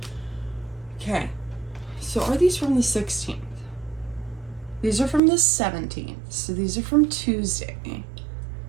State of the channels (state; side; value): drops out; left; at 5.2 s